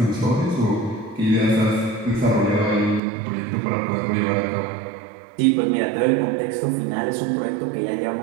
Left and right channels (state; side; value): drops out; left; at 3.0 s